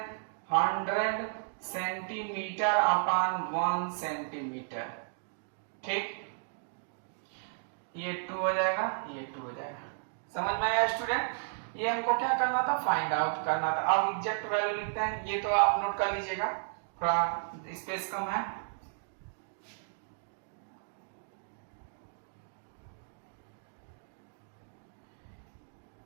100 सेंटीमीटर अपान 1 सेंटीमीटर, ठीक। ये 2 हो जाएगा, ये 2 हो जाएगा। समझ में आया स्टूडेंट। ये हमको क्या करना था फाइंड आउट करना था। अब एग्जैक्ट वैल्यू लिखते हैं, ये तो आप नोट कर लीजिएगा, थोड़ा स्पेस कम है।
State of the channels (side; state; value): left; silent; digital silence